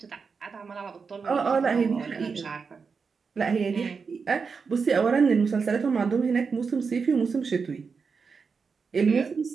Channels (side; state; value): left; quieter; 5.3 dB